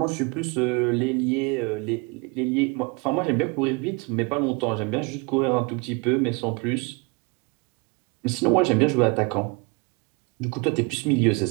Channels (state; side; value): quieter; left; 29.3 dB